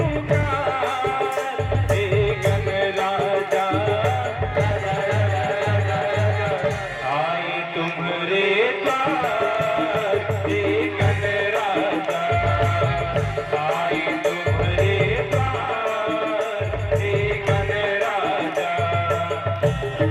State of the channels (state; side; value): identical; both; correlation 1.00